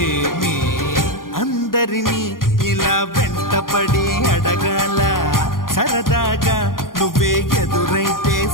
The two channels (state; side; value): late; right; 0.90 ms